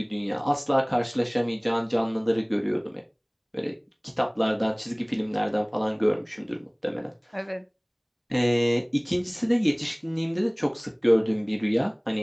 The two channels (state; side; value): identical; both; correlation 1.00